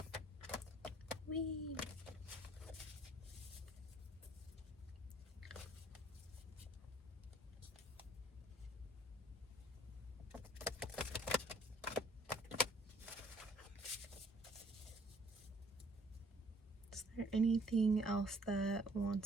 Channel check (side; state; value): both; normal; correlation 0.60